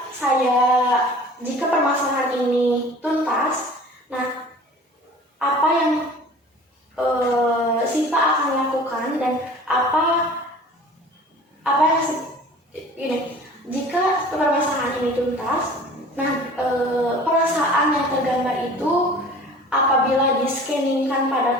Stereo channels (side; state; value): both; normal; correlation 0.44